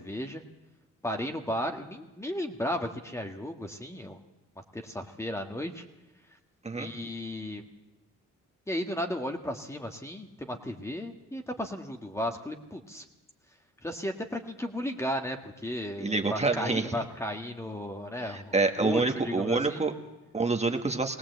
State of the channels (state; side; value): normal; both; correlation 0.54